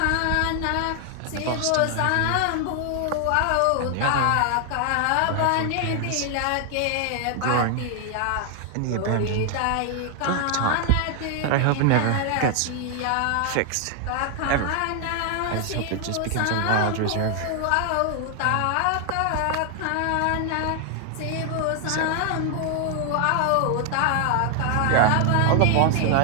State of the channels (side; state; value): both; different; correlation 0.00